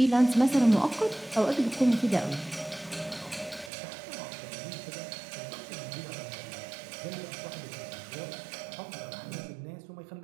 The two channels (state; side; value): drops out; left; at 3.7 s